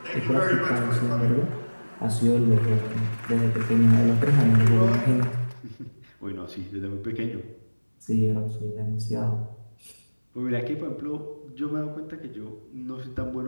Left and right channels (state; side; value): inverted; both; correlation -1.00